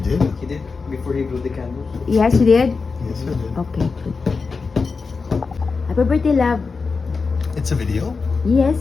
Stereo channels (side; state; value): right; quieter; 4.6 dB